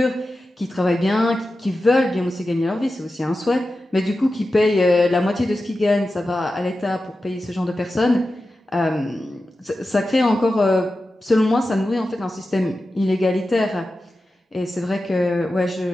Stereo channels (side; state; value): both; normal; correlation 0.92